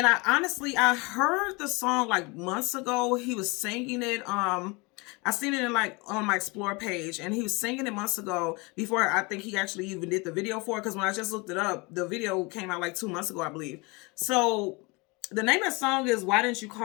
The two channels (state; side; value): quieter; right; 27.1 dB